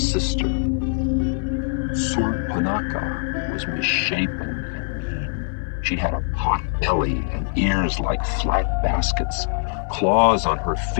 sister. Surpanaka was misshapen and mean. She had a pot belly and ears like flat baskets, claws on her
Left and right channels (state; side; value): silent; right; 58 dB below the other